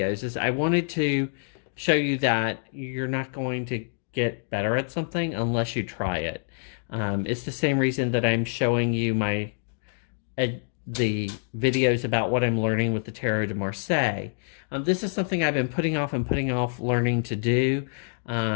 is I wanted to show you that you're not going to get better at something unless you try it. It's the same reason that I'm showing you the videos about what I'm learning with the Tarot de Marseille. This is something I've been putting off learning to do.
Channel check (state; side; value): silent; right; digital silence